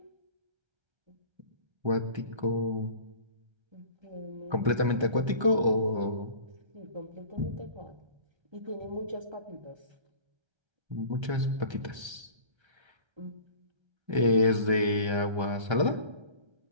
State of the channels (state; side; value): late; left; 1.3 ms